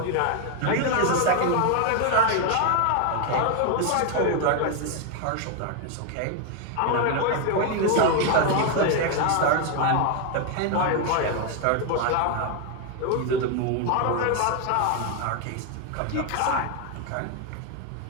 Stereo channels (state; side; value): different; both; correlation 0.01